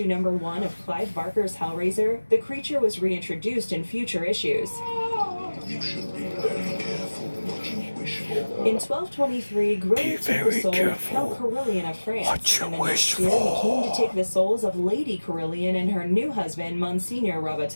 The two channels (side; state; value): both; inverted; correlation -1.00